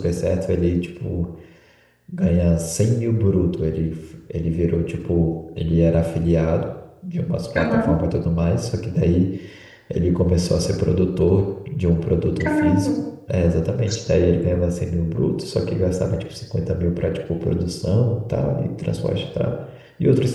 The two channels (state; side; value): identical; both; correlation 1.00